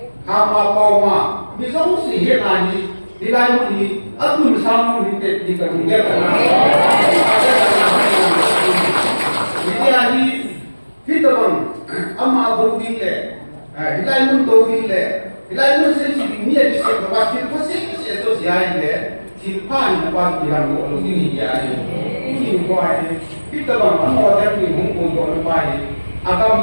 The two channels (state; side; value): inverted; both; correlation -1.00